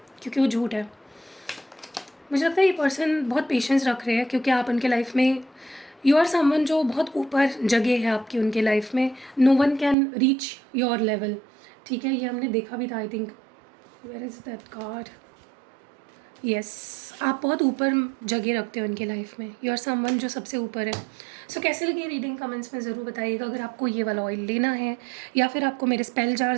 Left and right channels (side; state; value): left; drops out; at 10.0 s